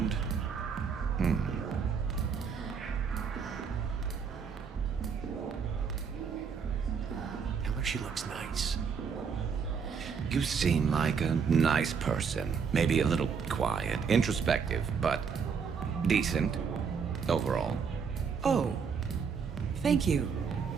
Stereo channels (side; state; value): left; quieter; 6.2 dB